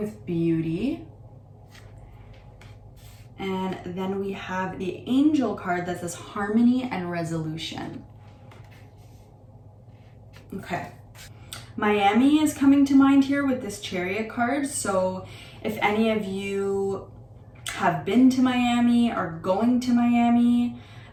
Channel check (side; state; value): both; identical; correlation 1.00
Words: beauty. And then we have the Angel card that says harmony and resolution. Okay. Miami is coming to mind here with this Chariot card. So if any of you have been to Miami or going to Miami,